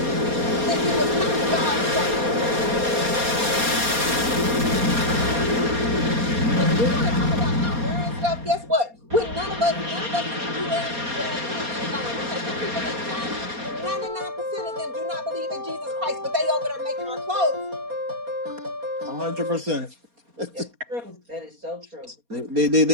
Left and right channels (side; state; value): left; late; 4.2 ms